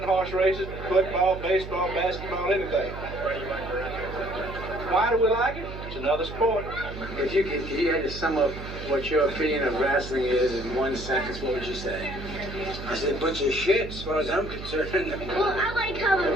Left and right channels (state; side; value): noise; right; hum, 10 dB below the sound